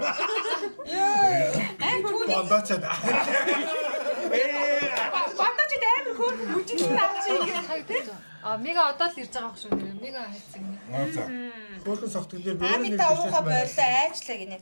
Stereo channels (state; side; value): inverted; both; correlation -1.00